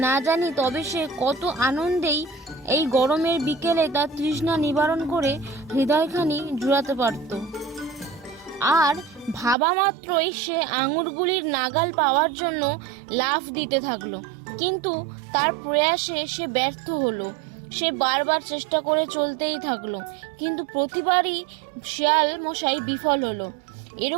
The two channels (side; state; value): left; drops out; at 9.6 s